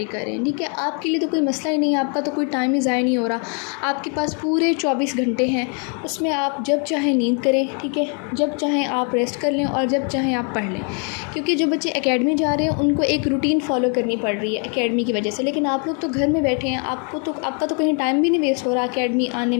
कर रहे हैं, ठीक है। आपके लिए तो कोई मसला ही नहीं है, आपका तो कोई टाइम ही ज़ाया नहीं हो रहा, आपके पास पूरे 24 घंटे हैं, उसमें आप जब चाहें नींद करें, ठीक है, जब चाहें आप रेस्ट कर लें, और जब चाहें आप पढ़ लें। क्योंकि जो बच्चे एकेडमी जा रहे हैं उनको एक रूटीन फॉलो करनी पड़ रही है एकेडमी की वजह से, लेकिन आप लोग तो घर में बैठे हैं, आपका तो कहीं टाइम भी नहीं वेस्ट हो रहा एकेडमी आने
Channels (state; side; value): quieter; right; 39.2 dB